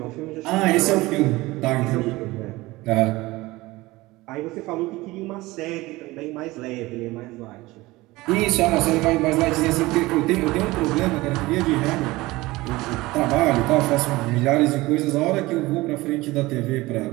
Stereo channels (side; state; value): left; quieter; 20.1 dB